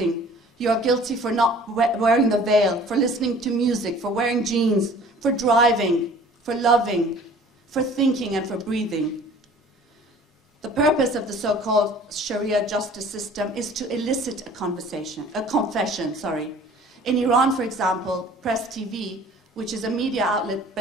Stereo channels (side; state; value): both; normal; correlation 0.49